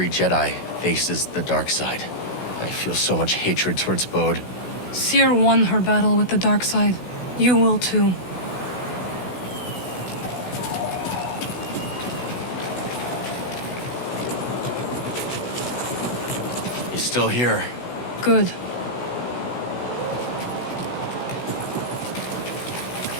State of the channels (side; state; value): right; late; 16 ms